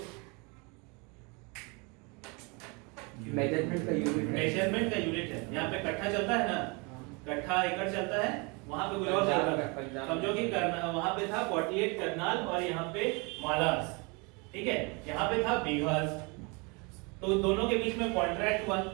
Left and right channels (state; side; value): quieter; left; 30.1 dB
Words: मेजरमेंट का यूनिट है, यहाँ पे कट्ठा चलता है ना, कट्ठा एकड़ चलता है, वहां पे कुछ और चल रहा था, समझो कि वहां पे था 48 करनाल और यहाँ पे मालास, ठीक है, यहाँ पे था बीघास। तो दोनों के बीच में कॉन्ट्रैक्ट हुआ,